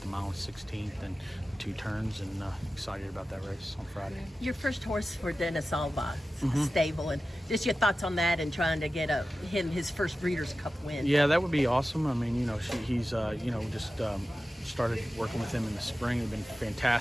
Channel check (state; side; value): normal; both; correlation 0.94